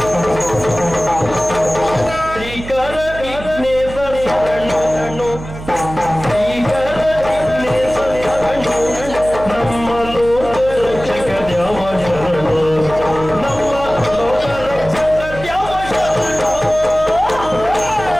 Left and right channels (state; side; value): noise; right; hum, 12 dB below the sound